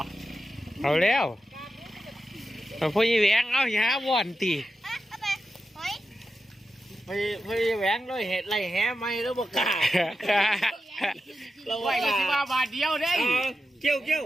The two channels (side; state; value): both; normal; correlation 0.90